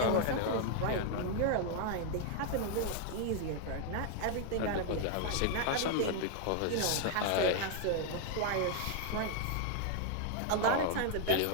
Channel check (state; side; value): different; both; correlation 0.00